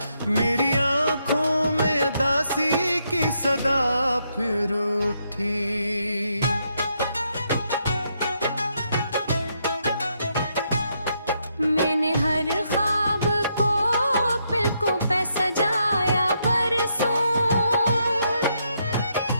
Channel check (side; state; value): both; inverted; correlation -0.77